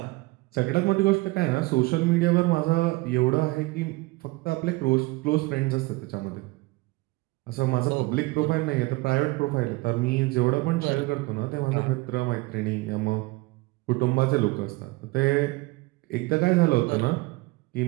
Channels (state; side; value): quieter; left; 22.4 dB